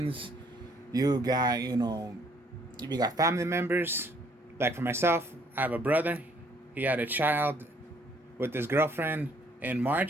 you got family members. Like for myself, I have a brother. He had a child with his girlfriend in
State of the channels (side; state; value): both; normal; correlation 0.64